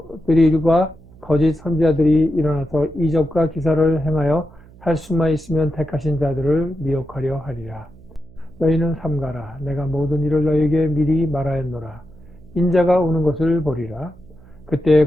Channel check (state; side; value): noise; right; hum, 24 dB below the sound